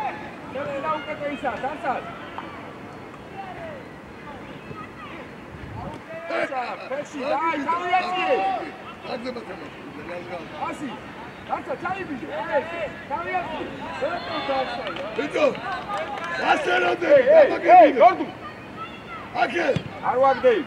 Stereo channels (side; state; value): both; identical; correlation 1.00